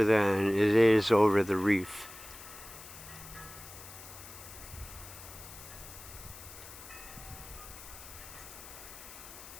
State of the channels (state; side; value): noise; left; hiss, 15 dB below the sound